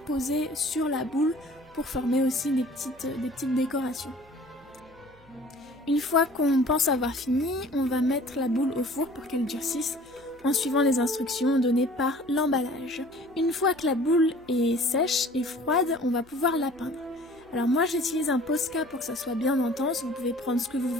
sur la boule pour former aussi des petites décorations. Une fois qu'on pense avoir fini, on va mettre la boule au four pour qu'elle durcisse en suivant les instructions données par l'emballage. Une fois que la boule est sèche et froide, on va pouvoir la peindre. Alors moi j'utilise un Posca pour que ça soit bien intense, vous pouvez prendre ce que vous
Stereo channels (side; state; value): right; noise; hum, 28 dB below the sound